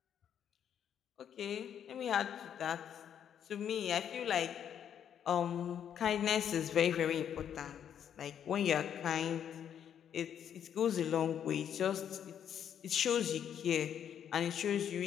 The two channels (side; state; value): right; quieter; 9.0 dB